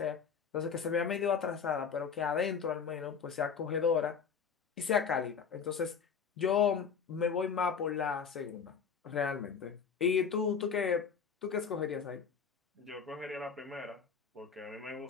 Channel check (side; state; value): right; quieter; 6.5 dB